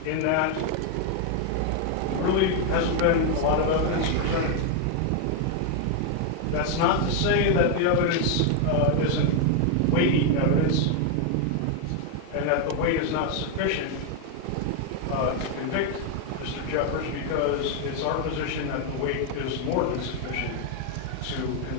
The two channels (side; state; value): both; different; correlation 0.01